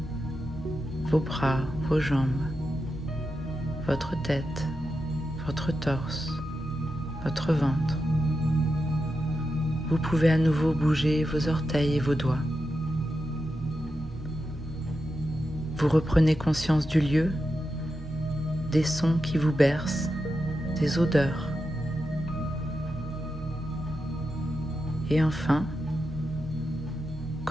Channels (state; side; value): normal; both; correlation 0.88